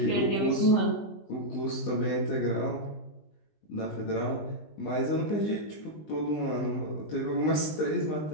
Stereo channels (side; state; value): right; late; 20 ms